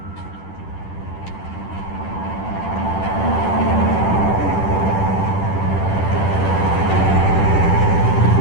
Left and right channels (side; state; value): right; late; 10 ms